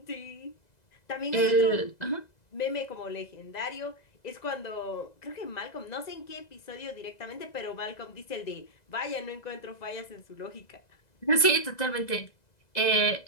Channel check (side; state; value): right; late; 2.0 ms